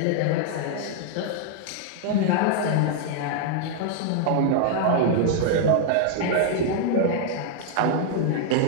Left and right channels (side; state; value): both; different; correlation -0.01